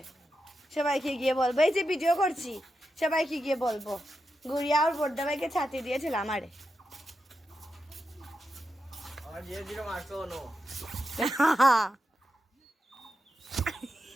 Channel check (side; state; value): both; normal; correlation 0.87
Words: সবাইকে গিয়ে বলবো, এই যে ভিডিও করছি, সবাইকে গিয়ে বলবো গুড়িয়া আর বড়দাবাইকে ছাতি দিয়েছিল আমারে।